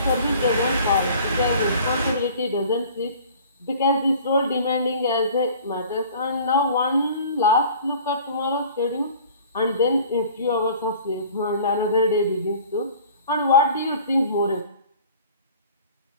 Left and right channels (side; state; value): both; inverted; correlation -0.47